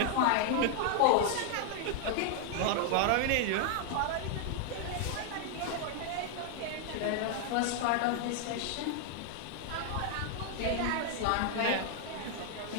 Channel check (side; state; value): both; different; correlation 0.00